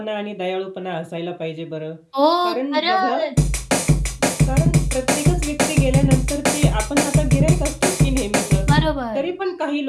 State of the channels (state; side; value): identical; both; correlation 1.00